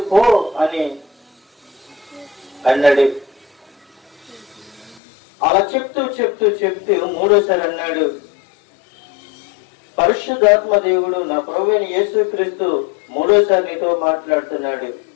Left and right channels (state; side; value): drops out; right; at 5.0 s